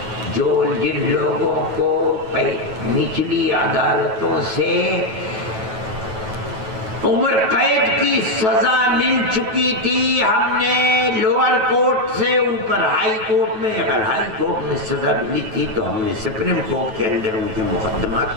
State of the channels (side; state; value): left; late; 9.2 ms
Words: جن لوگوں کو نچلی عدالتوں سے عمر قید کی سزا مل چکی تھی، ہم نے لوور کورٹ سے اوپر ہائی کورٹ میں، اگر ہائی کورٹ میں سزا ملی تھی تو ہم نے سپریم کورٹ کے اندر ان کے